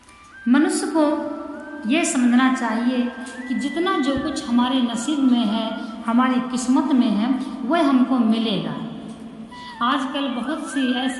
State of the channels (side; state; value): both; identical; correlation 1.00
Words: मनुष्य को यह समझना चाहिए कि जितना जो कुछ हमारे नसीब में है, हमारी किस्मत में है, वह हमको मिलेगा। आजकल बहुत सी